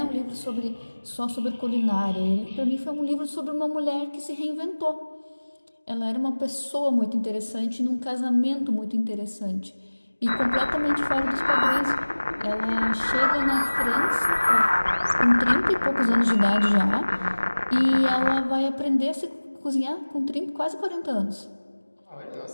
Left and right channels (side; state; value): both; inverted; correlation -1.00